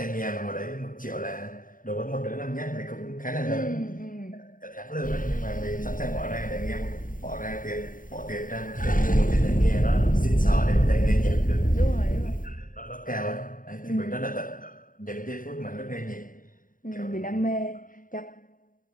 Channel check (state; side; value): late; right; 0.39 ms